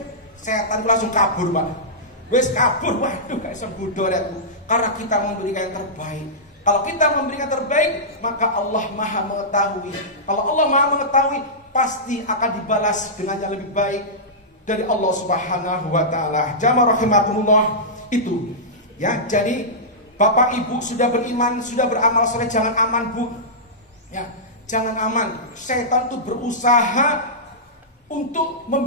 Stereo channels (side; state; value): both; normal; correlation -0.15